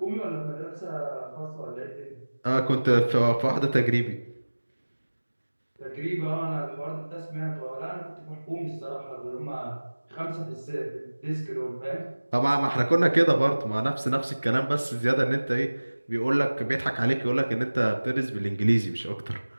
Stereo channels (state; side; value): inverted; both; correlation -1.00